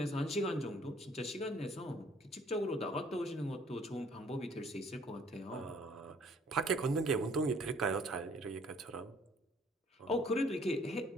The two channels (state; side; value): normal; both; correlation 0.59